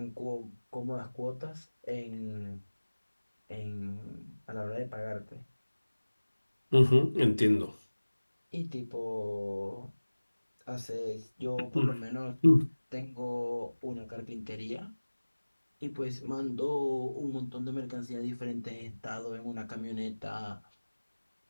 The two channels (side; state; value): both; inverted; correlation -1.00